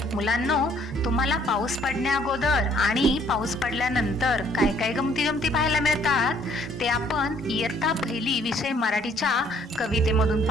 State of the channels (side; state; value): both; normal; correlation 0.63